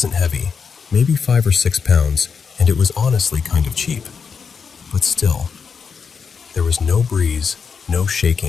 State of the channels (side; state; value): right; quieter; 6.0 dB